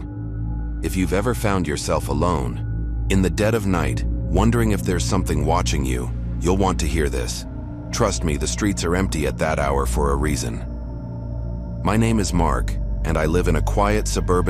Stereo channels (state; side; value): identical; both; correlation 1.00